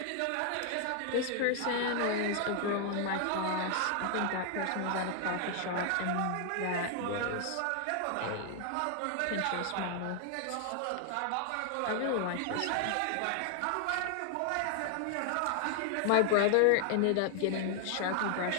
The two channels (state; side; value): different; both; correlation 0.00